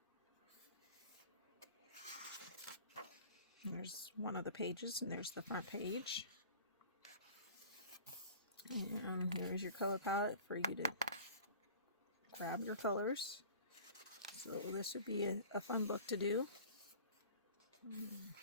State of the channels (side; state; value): both; inverted; correlation -0.43